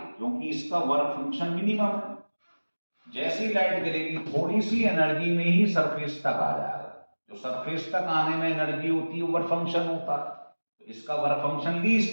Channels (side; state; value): both; inverted; correlation -1.00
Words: क्योंकि इसका वर्क फंक्शन मिनिमम है। जैसी लाइट गिरेगी थोड़ी सी एनर्जी में ही सरफेस तक आ जाएगा। जो सरफेस तक आने में एनर्जी होती है वर्क फंक्शन होता है। तो इसका वर्क फंक्शन